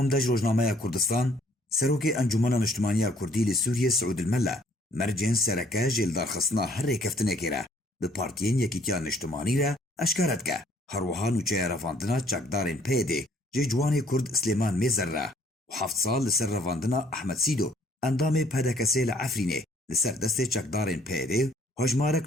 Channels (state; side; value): normal; both; correlation 0.62